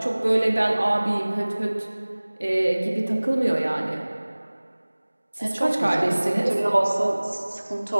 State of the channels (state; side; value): inverted; both; correlation -1.00